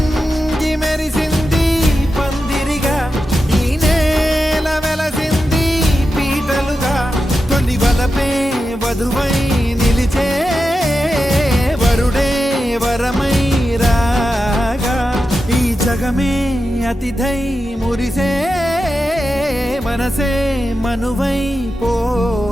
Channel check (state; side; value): normal; both; correlation 0.91